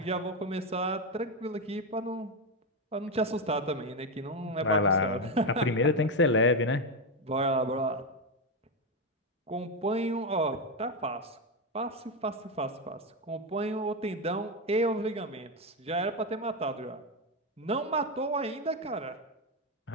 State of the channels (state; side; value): normal; both; correlation 0.09